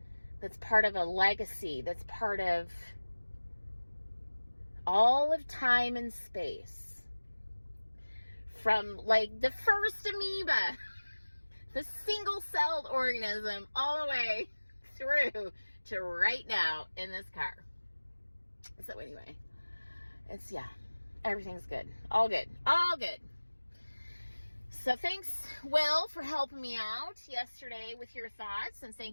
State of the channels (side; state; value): both; inverted; correlation -1.00